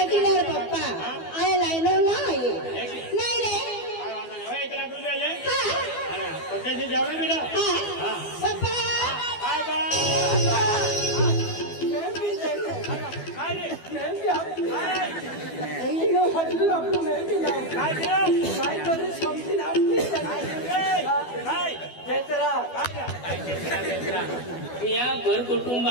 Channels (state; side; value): late; right; 12 ms